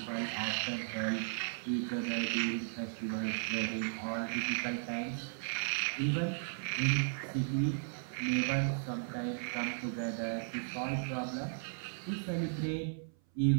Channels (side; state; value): left; silent; 54 dB below the other